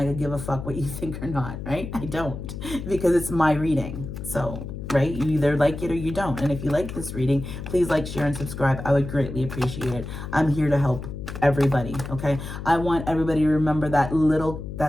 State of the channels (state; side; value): noise; left; hum, 8 dB below the sound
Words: could give a fuck what you think or not, right? I don't, because it's my reading. So, right? You either like it or you don't. And if you like this reading, please like, share, and subscribe. I would greatly appreciate it. I'm here to help everybody, okay? I want everybody to remember that little